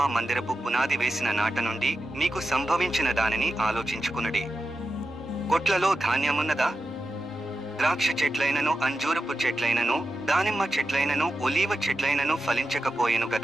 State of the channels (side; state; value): left; noise; rumble, 29 dB below the sound